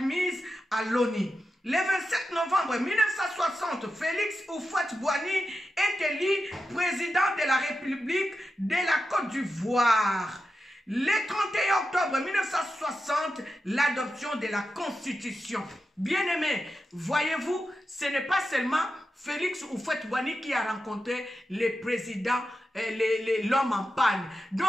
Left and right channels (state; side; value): normal; both; correlation 0.90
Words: à l'ONU. Le 27 novembre 1960, Félix Houphouët-Boigny est élu président de la République de la Côte d'Ivoire. Le 31 octobre 1960, l'adoption de la Constitution. Bien-aimés, voyez-vous, ce n'est pas seulement Félix Houphouët-Boigny qui a rencontré le président, l'homme en panne.